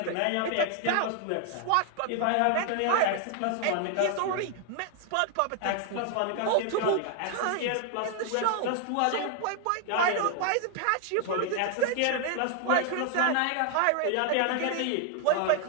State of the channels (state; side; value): different; both; correlation 0.00